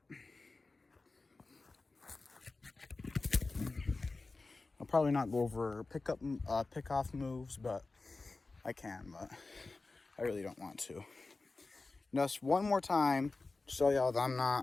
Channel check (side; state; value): right; quieter; 3.6 dB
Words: I'll probably not go over pick-off moves, but I can, but I really don't want to. Just one more time to show y'all that I'm